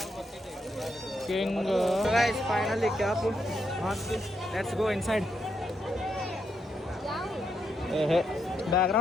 king guys finally cap let's go inside ಏಹೇ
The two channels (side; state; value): both; normal; correlation 0.80